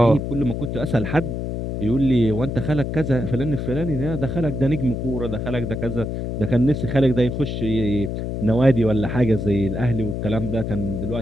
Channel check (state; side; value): noise; left; hum, 4 dB below the sound